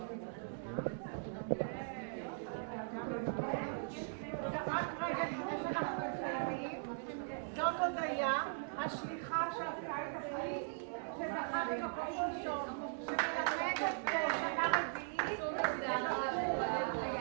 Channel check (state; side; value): silent; left; digital silence